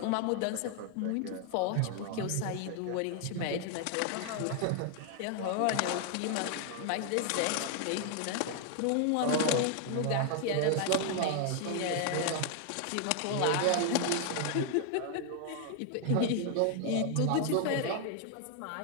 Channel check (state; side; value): different; both; correlation 0.00